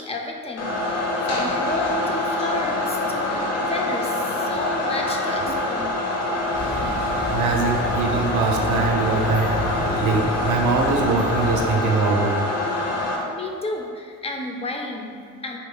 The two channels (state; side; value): normal; both; correlation 0.23